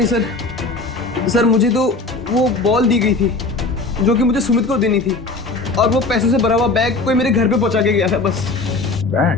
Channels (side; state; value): right; quieter; 3.4 dB